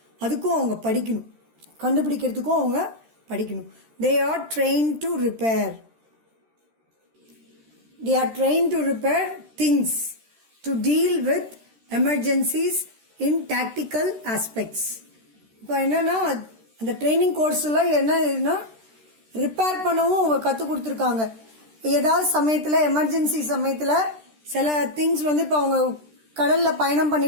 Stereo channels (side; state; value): left; late; 13 ms